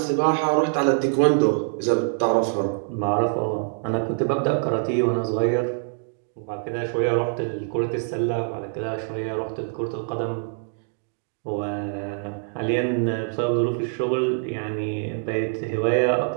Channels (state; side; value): silent; left; 62 dB below the other